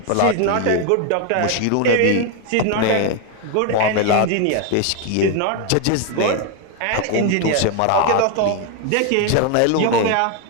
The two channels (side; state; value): both; different; correlation 0.01